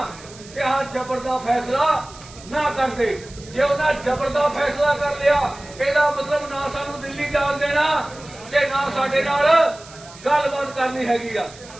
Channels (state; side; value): noise; right; hiss, 20 dB below the sound